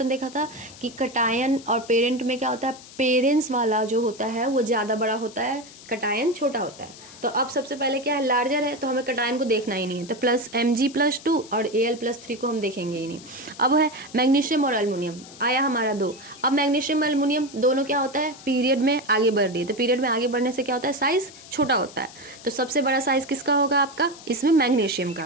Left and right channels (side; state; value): left; noise; hiss, 19 dB below the sound